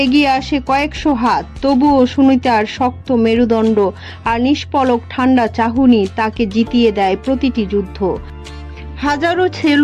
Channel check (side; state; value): both; identical; correlation 1.00